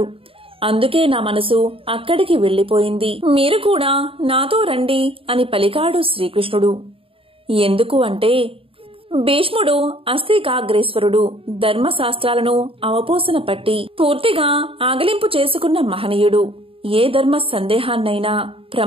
అందుకే నా మనసు అక్కడికి వెళ్లిపోయింది. మీరు కూడా నాతో రండి అని పలికాడు శ్రీకృష్ణుడు. ఎందుకు అంటే, భీష్ముడు అస్థికాగ్రేశ్వరుడు, ధర్మశాస్త్రాలను అవపోసన పట్టి పూర్తిగా ఆగలింపు చేసుకున్న మహనీయుడు. ఏ ధర్మ సందేహాన్నైనా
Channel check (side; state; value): left; late; 0.27 ms